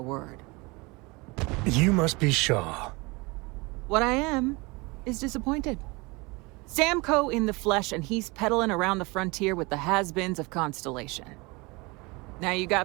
word. You must be Shaw. What I am is disappointed. Samco in the flesh, and he's peddling around the frontier with the has-beens of Constellation. Now you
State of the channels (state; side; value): quieter; left; 25.8 dB